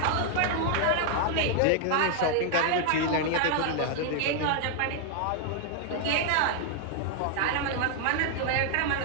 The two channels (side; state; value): both; different; correlation 0.00